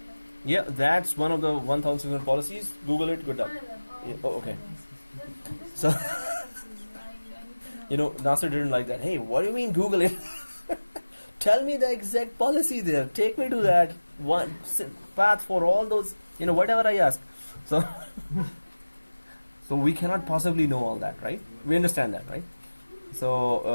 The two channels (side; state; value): both; inverted; correlation -1.00